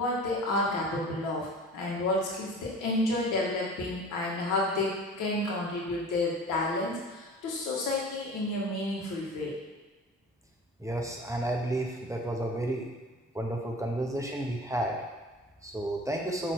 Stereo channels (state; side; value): normal; both; correlation 0.40